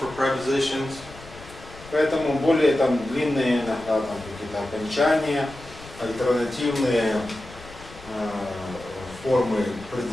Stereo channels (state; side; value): noise; left; rumble, 18 dB below the sound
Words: prepositions. Поэтому более там длинные иногда там какие-то окончания, альтернативные формы